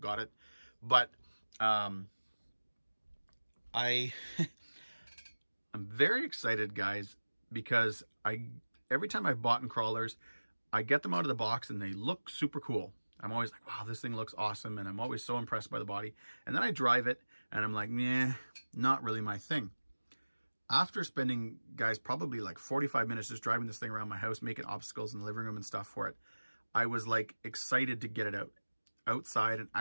it. But I'm very excited, guys, because every time I've bought in crawlers, I get them out of the box and they look super cool. I'm always like, wow, this thing looks awesome, and I'm always so impressed by the body. And then I drive it and I'm like, nah, not really my thing. After spending, guys, probably like 45 minutes just driving this thing around my house, making obstacles in the living room and stuff for it, I was like excited to get it outside and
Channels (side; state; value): both; inverted; correlation -1.00